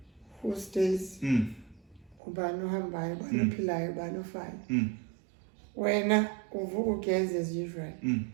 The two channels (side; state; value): left; drops out; at 2.2 s